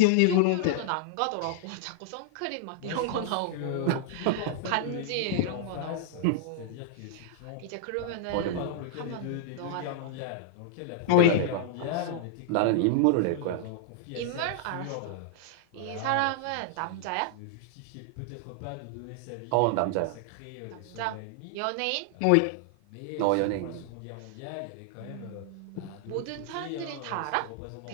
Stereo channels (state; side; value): different; both; correlation -0.01